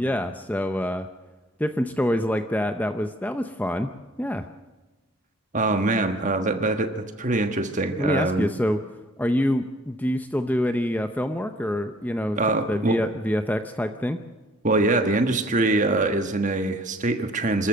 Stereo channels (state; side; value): normal; both; correlation 0.57